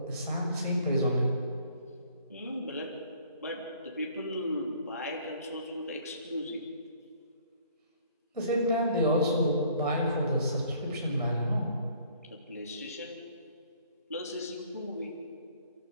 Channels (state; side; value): inverted; both; correlation -0.58